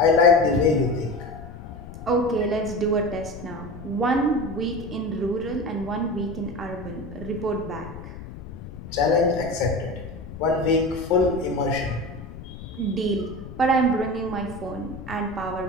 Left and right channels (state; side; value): noise; left; rumble, 13 dB below the sound